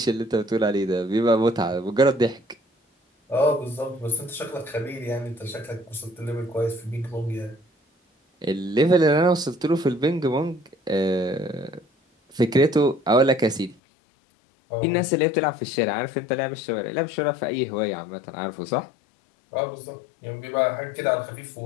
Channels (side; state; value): right; drops out; at 13.8 s